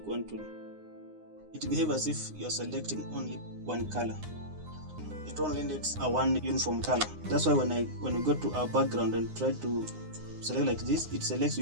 wand tool. It behaves as if you're selecting only one color. It only needs a one uniform color. That's why when we go to our background and try to select like this, it selects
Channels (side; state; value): left; late; 9.7 ms